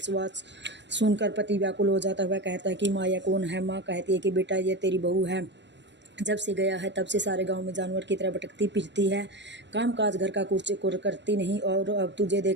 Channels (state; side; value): late; left; 0.52 ms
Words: सुनकर पति व्याकुल हो जाता हुआ कहता है कि माँ यह कौन है। माँ कहती है कि बेटा ये तेरी बहू है, जब से गया है तब से सारे गांव में जानवर की तरह भटकती फिरती है, काम काज घर का कुछ करती नहीं और अब तुझे